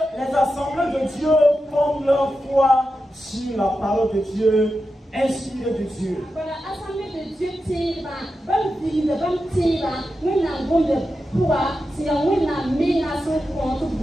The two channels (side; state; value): both; normal; correlation 0.90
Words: les assemblées de Dieu fondent leur foi sur la parole de Dieu, inspirée de Dieu.